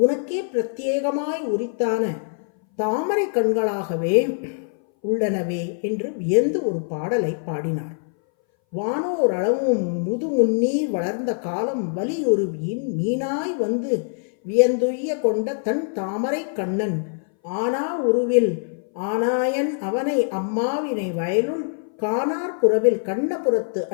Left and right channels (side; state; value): right; silent; 60 dB below the other